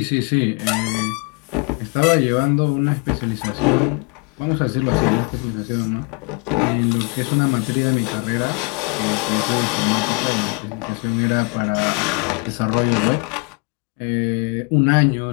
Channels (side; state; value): right; quieter; 30.5 dB